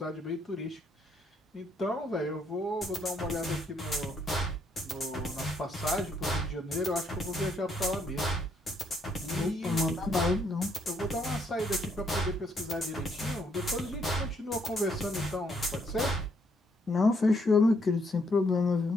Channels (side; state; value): both; normal; correlation 0.71